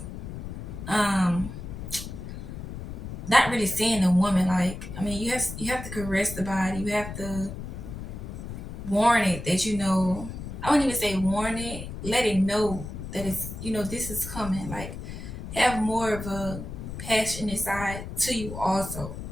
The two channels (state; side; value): noise; left; rumble, 9 dB below the sound